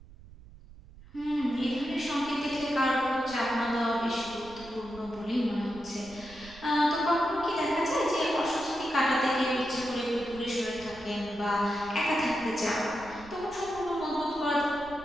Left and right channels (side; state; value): right; noise; rumble, 20 dB below the sound